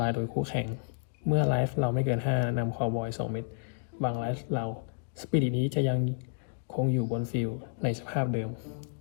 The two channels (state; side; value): silent; right; digital silence